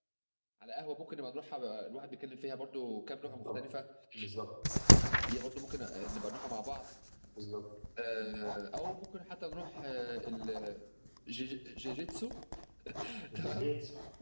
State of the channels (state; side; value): inverted; both; correlation -1.00